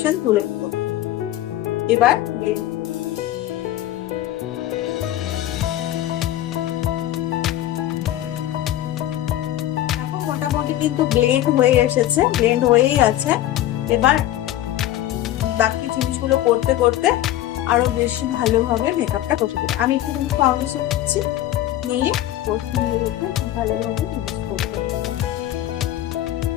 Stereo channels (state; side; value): quieter; right; 13.6 dB